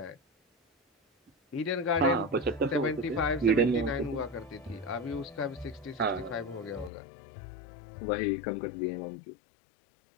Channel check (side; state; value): right; drops out; at 6.9 s